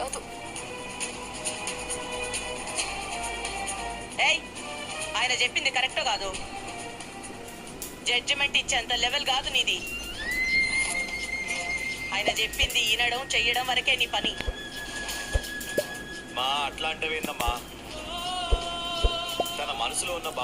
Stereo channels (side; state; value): both; identical; correlation 1.00